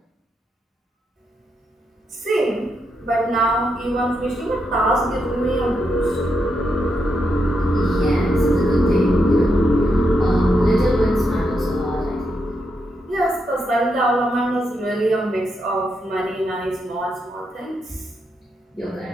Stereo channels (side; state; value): both; normal; correlation 0.82